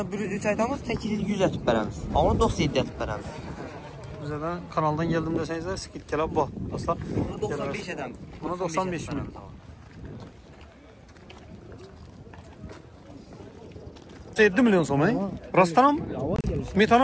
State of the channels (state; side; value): identical; both; correlation 1.00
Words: 103 aytamız, 800 atıb bərəmiz. Onu 97 atıb bərəmiz. Bize de kanaldan geldim deseniz skit gelip bak. Asla. Bunu 95 adam. Buna 95 mi? 7 milyon so'm, rostdan mı?